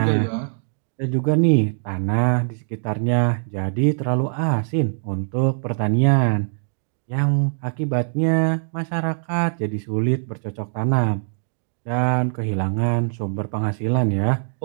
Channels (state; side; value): silent; left; digital silence